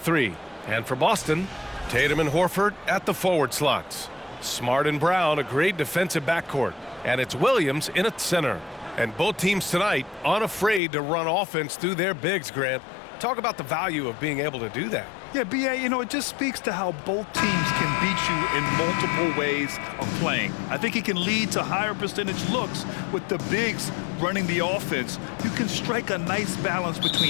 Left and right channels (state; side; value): drops out; right; at 10.8 s